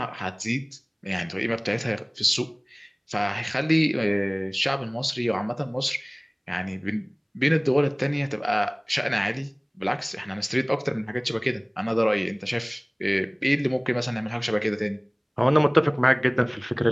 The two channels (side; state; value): both; identical; correlation 1.00